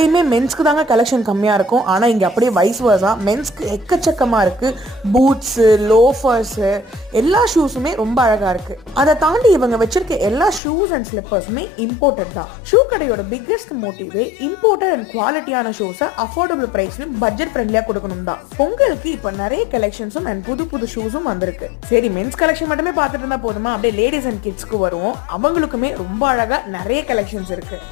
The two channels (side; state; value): right; drops out; at 10.6 s